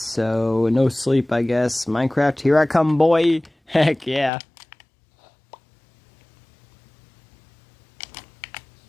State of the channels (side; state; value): right; drops out; at 4.3 s